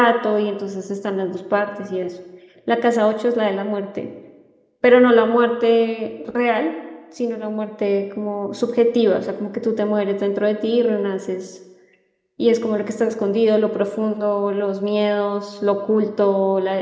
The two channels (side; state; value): both; identical; correlation 1.00